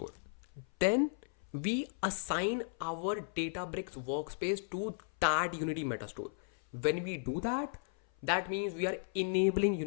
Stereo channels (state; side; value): silent; right; 54 dB below the other